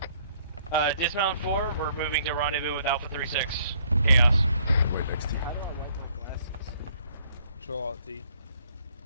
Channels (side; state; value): both; inverted; correlation -0.64